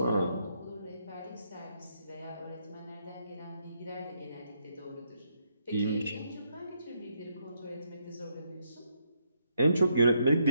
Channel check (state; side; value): inverted; both; correlation -0.76